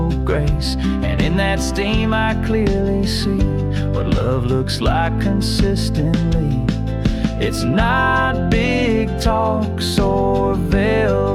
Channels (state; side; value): identical; both; correlation 1.00